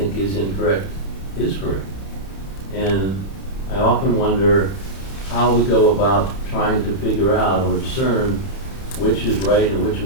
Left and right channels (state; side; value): late; right; 31 ms